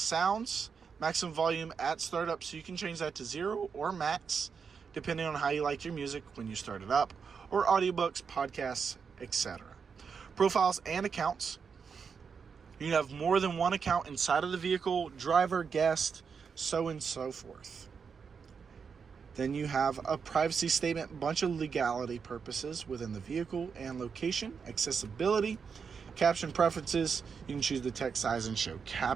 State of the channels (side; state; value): left; quieter; 6.0 dB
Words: maximum volume at startup, so you can change that to 0 or max, depending on how you like your music when you start it up, or audiobooks, podcasts, etc. Profiles and accounts. You can have more than one account inside of the vehicle, driver, guest, so and so forth. Then you have a privacy statement, bunch of legality purposes within the vehicle and location, accessibility, caption preferences. You can choose the text size and show